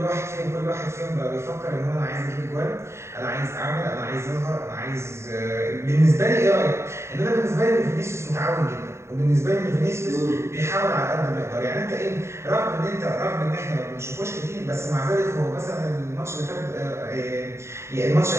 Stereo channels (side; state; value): left; late; 0.13 ms